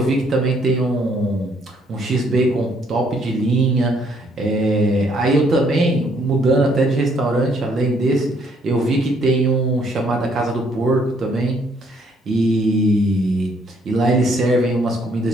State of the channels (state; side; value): normal; both; correlation 0.67